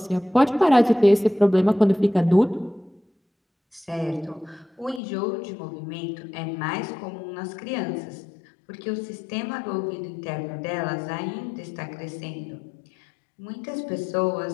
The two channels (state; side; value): drops out; right; at 5.0 s